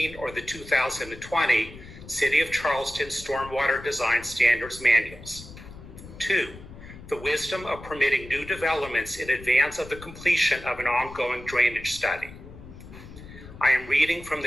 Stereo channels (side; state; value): left; noise; rumble, 16 dB below the sound